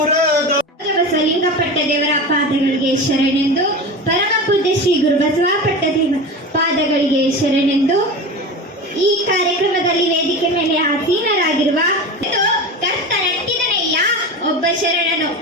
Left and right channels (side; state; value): both; normal; correlation 0.28